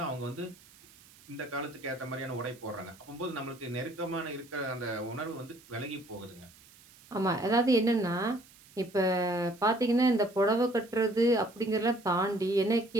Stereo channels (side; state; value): right; noise; hiss, 25 dB below the sound